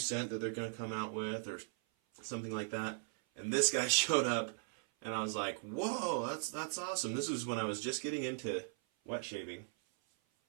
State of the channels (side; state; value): left; silent; 52 dB below the other